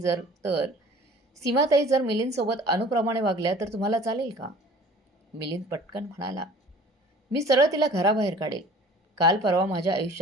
जर मिलिंदसोबत अनुप्रमाणे वागल्या तर तुम्हाला चालेल का? मिलिंद पटकन म्हणाला, मी सरळ तिला घराबाहेर काढेल. काल परवा माझ्या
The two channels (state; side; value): normal; both; correlation 0.48